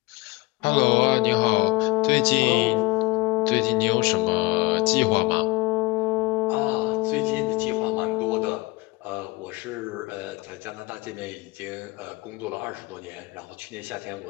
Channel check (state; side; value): quieter; right; 22.9 dB